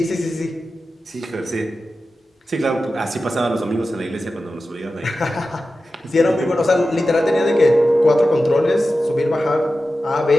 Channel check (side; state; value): both; normal; correlation 0.93